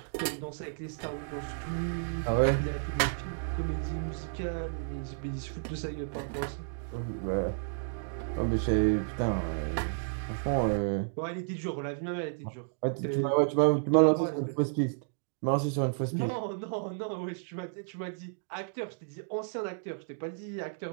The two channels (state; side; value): silent; left; digital silence